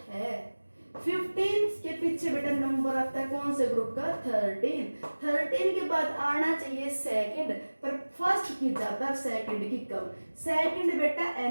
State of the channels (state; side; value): inverted; both; correlation -1.00